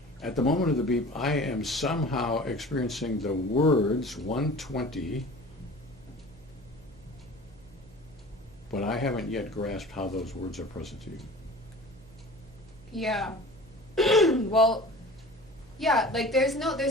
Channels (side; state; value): right; noise; hum, 23 dB below the sound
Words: at the moment of the beep, I am somehow experiencing the words 120, but I haven't yet grasped how those words are present to you. Yeah. Well, yeah, like there's